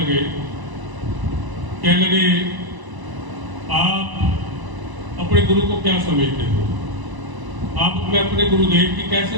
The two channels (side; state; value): left; late; 1.0 ms